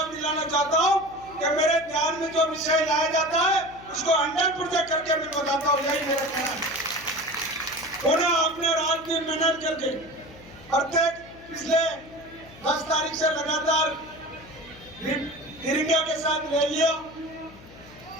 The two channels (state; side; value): noise; left; hum, 20 dB below the sound